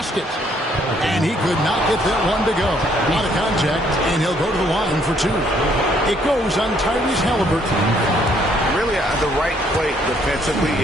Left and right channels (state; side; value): normal; both; correlation 0.67